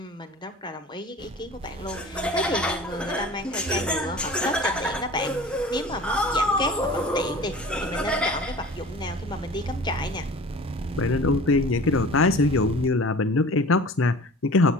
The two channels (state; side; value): normal; both; correlation 0.42